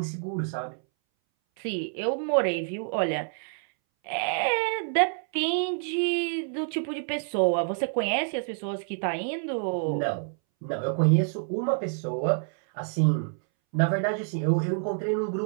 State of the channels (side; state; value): left; silent; 60 dB below the other